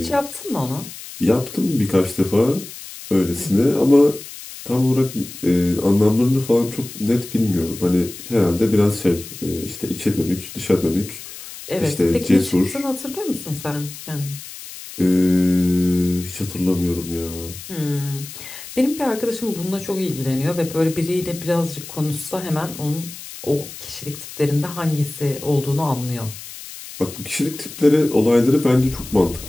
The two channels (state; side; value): noise; left; hiss, 13 dB below the sound